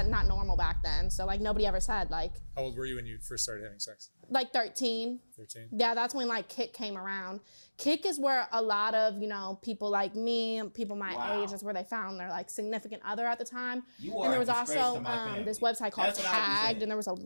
normal back then. So nobody ever said How old were you when you first started having sex? 13. 13. Yeah, that's when Kick came around. Kick is where a lot of, you know, people like me, people my age, is where they found their significant other at the time. And there was also this website called Tagged, and there was a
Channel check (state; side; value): inverted; both; correlation -1.00